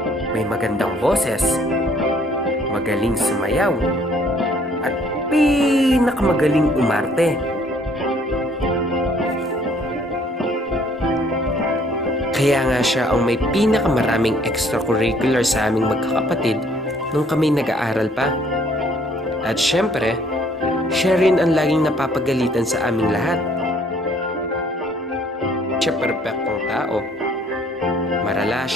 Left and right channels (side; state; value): both; normal; correlation 0.61